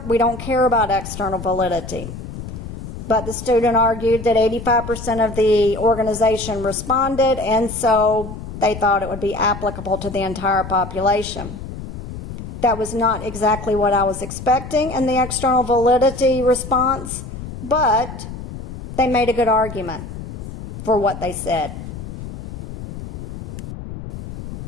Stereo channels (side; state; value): left; noise; rumble, 10 dB below the sound